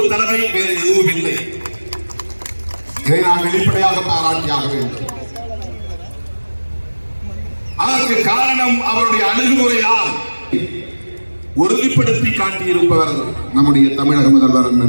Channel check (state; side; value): inverted; both; correlation -1.00